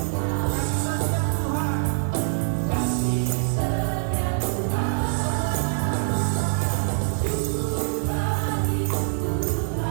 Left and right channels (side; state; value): left; silent; digital silence